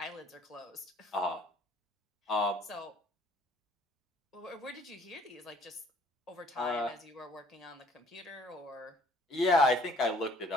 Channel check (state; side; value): normal; both; correlation 0.58